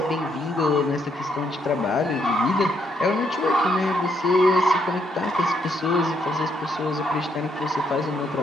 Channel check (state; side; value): normal; both; correlation 0.74